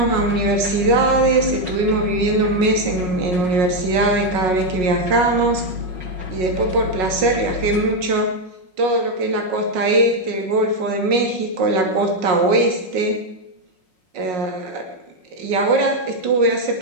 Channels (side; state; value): left; late; 5.5 ms